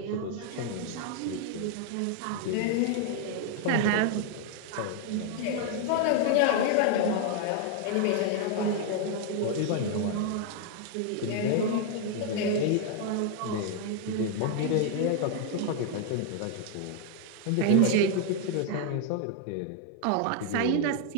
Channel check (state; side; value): different; both; correlation 0.00